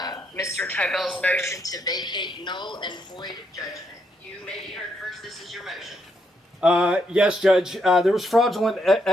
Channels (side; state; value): both; normal; correlation 0.77